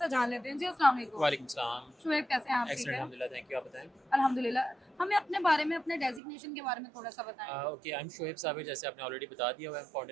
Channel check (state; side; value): drops out; left; at 6.2 s